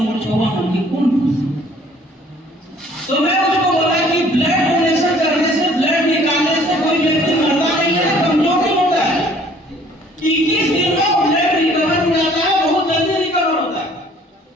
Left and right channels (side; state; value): both; normal; correlation 0.56